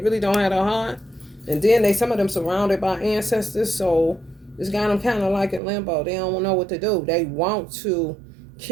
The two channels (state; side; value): drops out; left; at 5.6 s